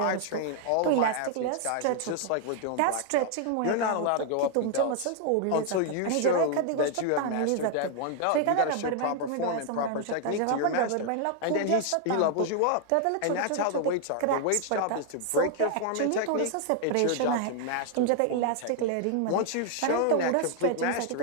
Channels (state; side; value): different; both; correlation 0.00